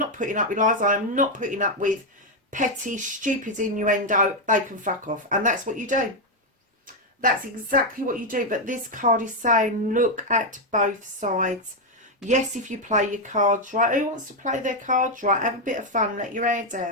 putting up with lies, I'm not putting up with petty stupid innuendo, they can fuck off. And that's what you do. That's exactly what you do. But this card is saying look at both sides. Yes, if you play your cards right. Who wants to play their cards right? Have a bit of fun, let your hair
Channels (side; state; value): both; normal; correlation 0.03